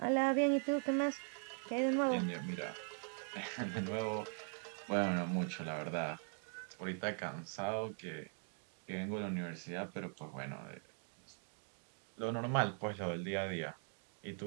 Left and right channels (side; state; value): left; silent; 50 dB below the other